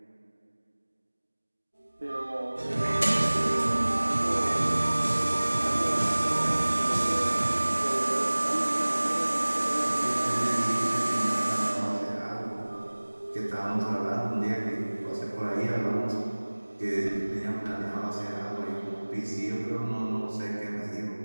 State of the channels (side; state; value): both; inverted; correlation -1.00